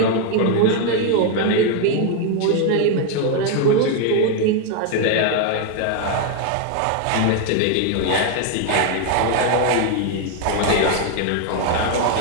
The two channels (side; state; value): both; different; correlation 0.01